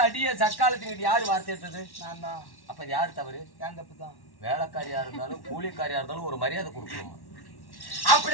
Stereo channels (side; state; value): right; late; 1.1 ms